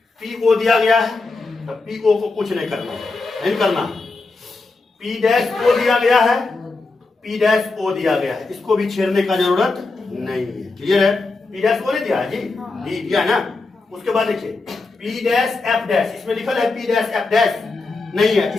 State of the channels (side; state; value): right; quieter; 3.7 dB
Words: पीओ दिया गया है, तो पीओ को कुछ नहीं करना, पी डैश ओ दिया गया है, पी डैश ओ दिया गया है, इसको भी छेड़ने का जरूरत नहीं है। क्लियर है। पी डैश ओ नहीं दिया है जी, डी दिया है ना। उसके बाद देखिए पी डैश एफ डैश, इसमें लिखल है पी डैश एफ डैश नहीं है,